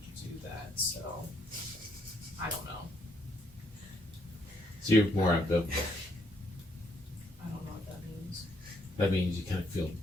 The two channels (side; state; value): both; normal; correlation 0.72